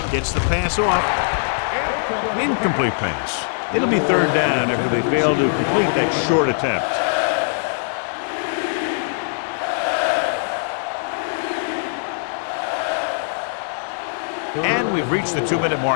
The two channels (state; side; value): silent; right; digital silence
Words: gets the pass off. Incomplete pass. It'll be third down after they fail to complete that short attempt. And we've reached the 2-minute